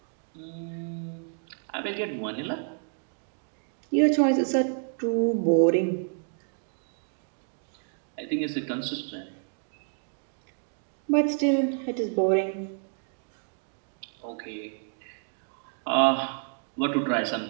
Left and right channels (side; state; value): left; silent; 58 dB below the other